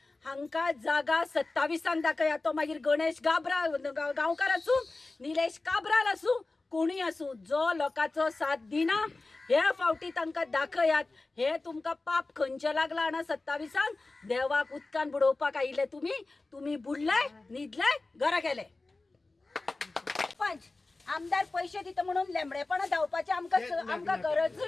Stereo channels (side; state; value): right; quieter; 3.3 dB